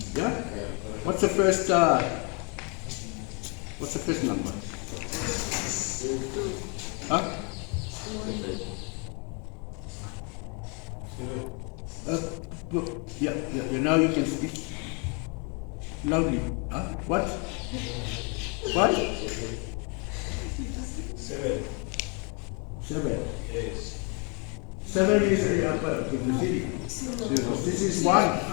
Yeah? What's the first number? Huh? Yeah, now you can speak loudly. Huh? What? What? 7. 7. Yes. 7 is the upper city. This is 1.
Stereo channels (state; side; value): quieter; right; 34.8 dB